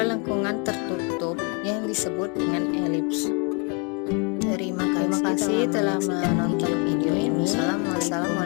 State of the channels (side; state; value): right; quieter; 34.7 dB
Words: lengkungan tertutup yang disebut dengan elips. Terima kasih telah menonton video ini.